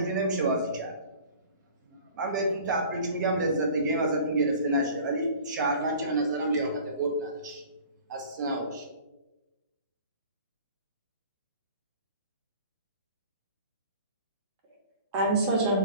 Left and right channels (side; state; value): both; inverted; correlation -0.46